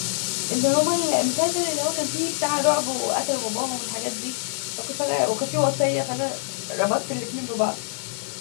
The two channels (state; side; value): silent; right; digital silence